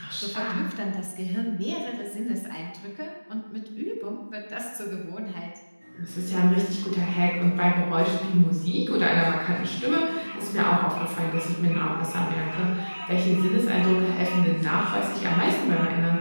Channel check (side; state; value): both; inverted; correlation -1.00